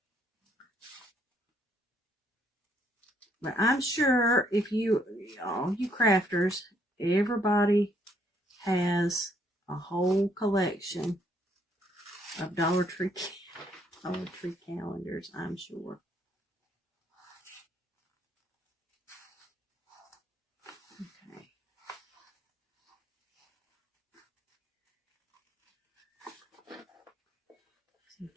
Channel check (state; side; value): normal; both; correlation 0.69